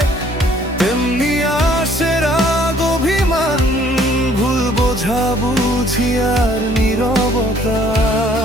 তেমনি আসে রাগ, অভিমান, ভুল বোঝাবুঝি আর নীরবতা।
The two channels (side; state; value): both; normal; correlation 0.60